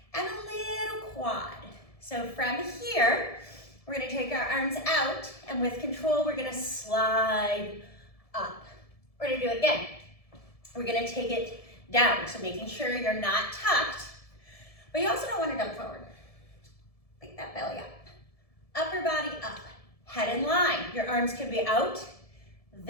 and a little quad. So from here, we're gonna take our arms out, and with control, we're gonna slide up. We're gonna do it again. We're gonna take it down, so making sure you're not tucked, but you also don't wanna dump forward. Pick that belly up. Upper body up, head in line. Your arms can be out,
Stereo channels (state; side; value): late; right; 1.7 ms